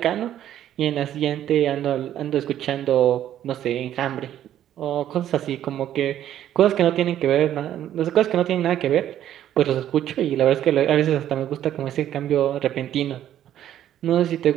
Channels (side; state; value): left; quieter; 11.4 dB